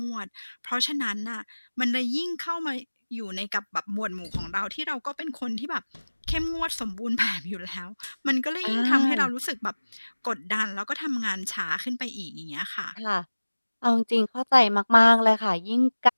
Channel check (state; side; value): inverted; both; correlation -1.00